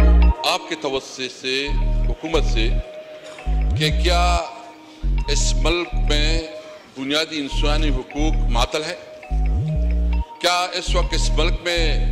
आपके तवज्जो से हुकूमत से कि क्या इस मुल्क में बुनियादी इंसानी हुकूक मातल है? क्या इस वक्त इस मुल्क में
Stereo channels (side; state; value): both; identical; correlation 1.00